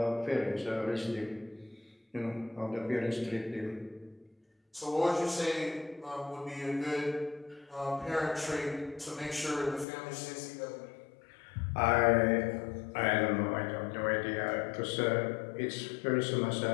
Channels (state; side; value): drops out; right; at 9.9 s